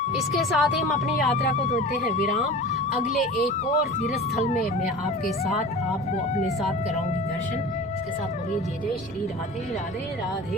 इसके साथ ही हम अपनी यात्रा को देते हैं विराम। अगले एक और तीर्थ स्थल में मैं आपके साथ आपको अपने साथ कराऊंगी दर्शन। इसके साथ बोलिए जय जय श्री राधे राधे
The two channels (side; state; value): left; noise; rumble, 22 dB below the sound